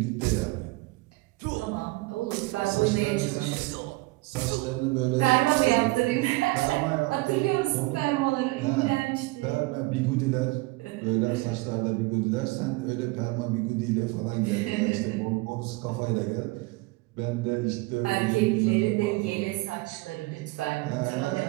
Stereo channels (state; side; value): quieter; left; 22.9 dB